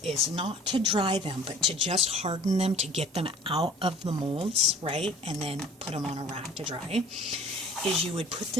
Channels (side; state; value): both; normal; correlation 0.48